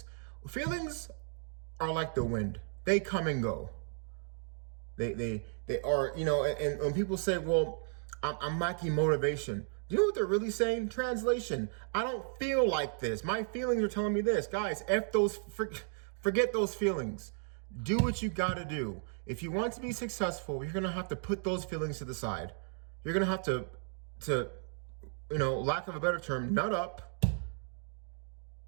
are like the wind. They come and go. They are, you know, and when people say, well, I'm lacking motivation. Do you know what they're really saying? Translation, I don't feel like this. My feelings are telling me this. Guys, forget those feelings. Do what you gotta do. If you want to be successful, you're gonna have to put those feelings to the side. You're gonna have to, you know, lack of a better term, nut up.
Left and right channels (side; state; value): left; silent; 55 dB below the other